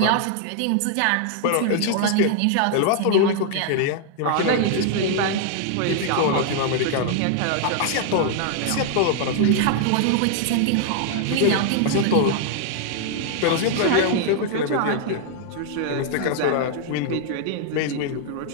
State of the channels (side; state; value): both; different; correlation 0.00